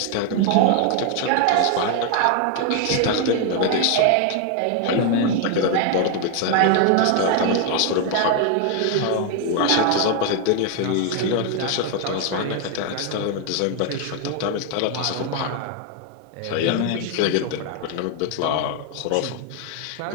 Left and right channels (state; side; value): different; both; correlation 0.00